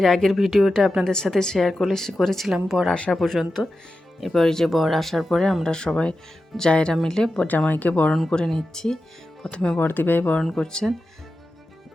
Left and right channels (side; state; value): both; normal; correlation 0.92